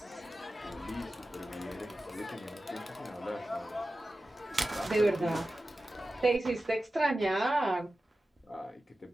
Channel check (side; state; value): both; normal; correlation 0.94